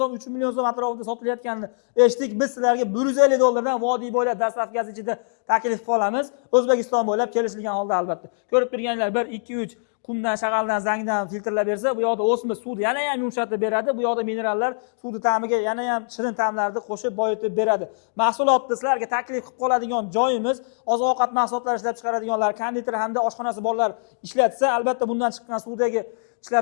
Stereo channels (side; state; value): right; silent; digital silence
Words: 3 million so'm atrofida sotilayotganini eshitdik. Biz sizlarga $150 dan vodiy bo'ylab dastavkasi ichida taklif qilib qolamiz. O'zbekiston bo'ylab kelishilgan holda albatta. Ko'rib turganlar 1, 2, 3 qumdan, shag'aldan, zangdan filtrlab bersa, bu yoqda o'sma suvni yana ham yumshatib beradi. Bu yoqda minerallar suvni ta'miga yana ham shirin ta'mlarni qo'shib boyitib beradi. Mahsulotni sizlarga taklif qilib qoladigan joyimiz oziq-ovqat mahsulotlari ishlab chiqaradiganlar, konditer hamda oshxonasi borlar ishlatsa, albatta bundan chiqqan suvdagi